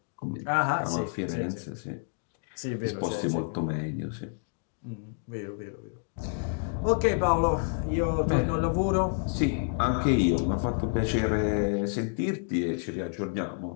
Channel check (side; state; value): right; silent; digital silence